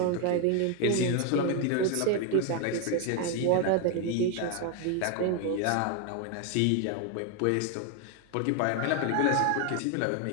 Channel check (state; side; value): different; both; correlation 0.01